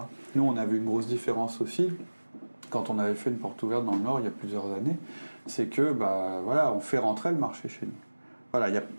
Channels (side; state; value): both; inverted; correlation -1.00